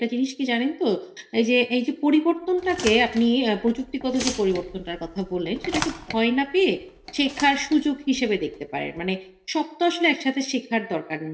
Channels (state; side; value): identical; both; correlation 1.00